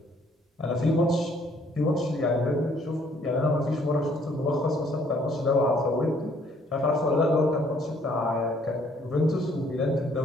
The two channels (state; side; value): normal; both; correlation 0.63